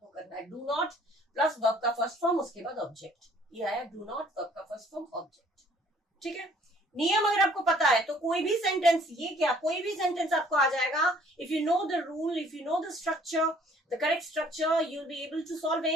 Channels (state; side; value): normal; both; correlation 0.58